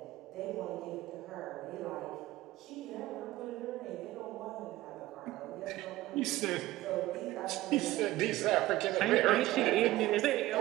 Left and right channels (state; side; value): quieter; left; 16.8 dB